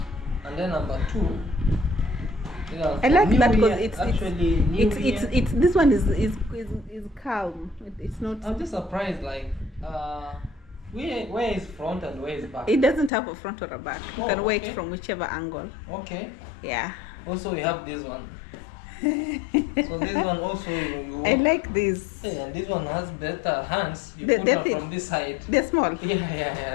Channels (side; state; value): right; drops out; at 13.1 s